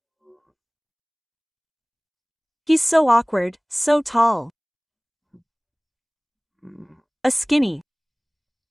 He's so awkward, so tall. A skinny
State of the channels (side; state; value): both; identical; correlation 1.00